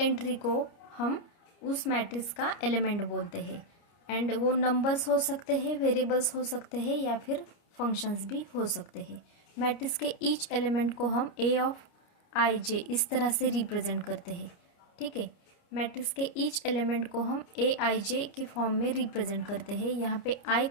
को हम उस मैट्रिक्स का एलिमेंट बोलते हैं। एंड वो नंबर्स हो सकते हैं, वेरिएबल्स हो सकते हैं या फिर फंक्शंस भी हो सकते हैं। मैट्रिक्स के ईच एलिमेंट को हम ए ऑफ आई जे इस तरह से रिप्रेजेंट करते हैं। ठीक है, मैट्रिक्स के ईच एलिमेंट को हम ए आई जे के फॉर्म में रिप्रेजेंट करते हैं। यहाँ पे आई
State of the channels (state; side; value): late; right; 29 ms